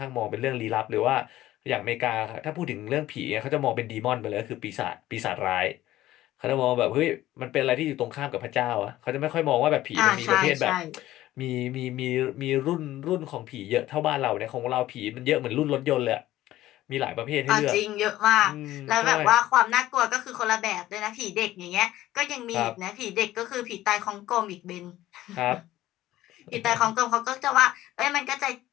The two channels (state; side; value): quieter; right; 14.9 dB